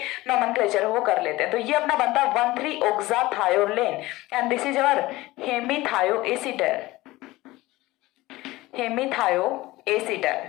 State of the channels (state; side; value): quieter; right; 19.0 dB